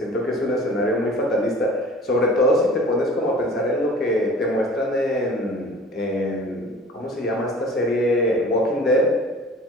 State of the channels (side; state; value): both; normal; correlation 0.45